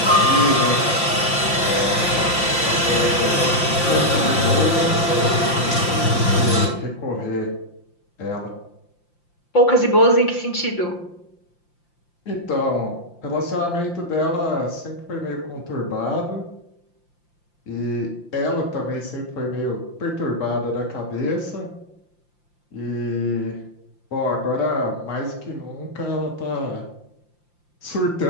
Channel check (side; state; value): right; late; 5.8 ms